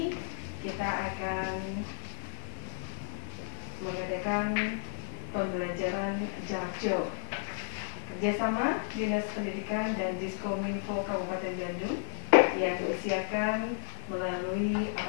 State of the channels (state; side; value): silent; right; digital silence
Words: kita akan mengadakan pembelajaran jarak jauh kerjasama Dinas Pendidikan dan Diskominfo Kabupaten Bandung yang diusiakan melalui